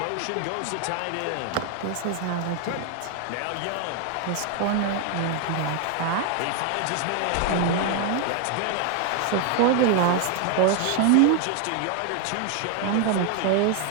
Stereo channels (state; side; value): different; both; correlation 0.00